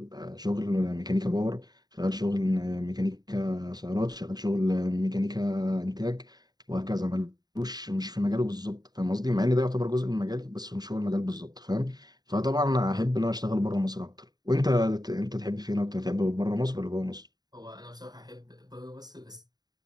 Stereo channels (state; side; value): late; left; 0.19 ms